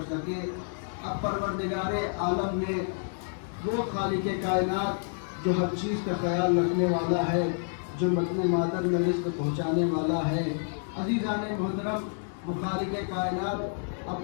सके। अब परवरदिगारे आलम ने वो खालिक़े कायनात जो हर चीज़ का ख्याल रखने वाला है, जो मतने मादर में रिज़्क़ पहुँचाने वाला है, अज़ीज़ाने मुहतरम वो खालिक़े कायनात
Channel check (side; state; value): right; silent; digital silence